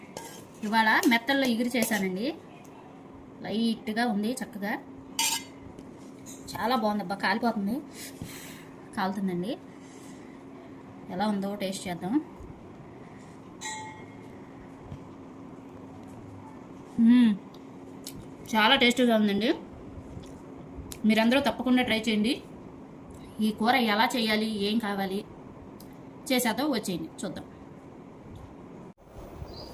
ఇవాళ మెత్తల్లో ఇగురు చేశానండి. లైట్గా ఉంది, చక్కగా చాలా బాగుంది. అబ్బా కాలిపోతుంది, కాలుతుందండి. ఎలా ఉందో టేస్ట్ చేద్దాం. చాలా టేస్టీగా ఉందండి. మీరందరూ తప్పకుండా ట్రై చేయండి. ఈ కూర ఎలా చేయాలి, ఏం కావాలి చేసేద్దాం, వచ్చేయండి చూద్దాం.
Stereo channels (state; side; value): identical; both; correlation 1.00